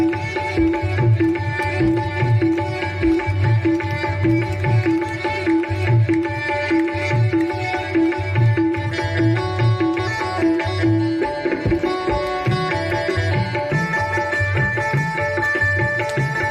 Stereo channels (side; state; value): both; identical; correlation 1.00